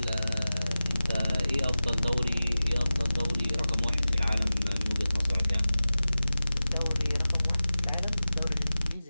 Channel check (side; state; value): both; inverted; correlation -0.96